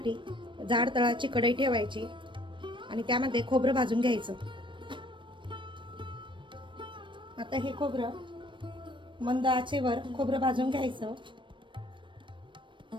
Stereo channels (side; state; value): left; late; 0.24 ms